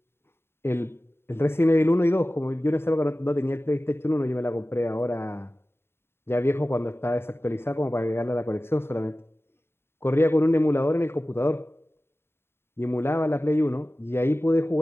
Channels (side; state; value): right; late; 0.11 ms